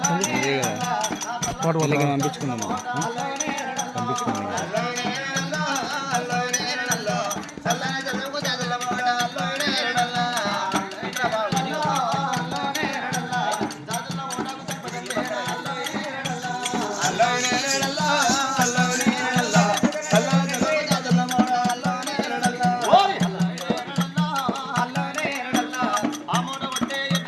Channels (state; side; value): identical; both; correlation 1.00